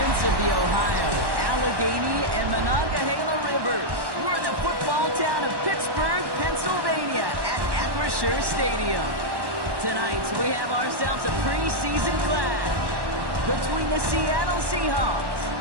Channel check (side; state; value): left; late; 1.1 ms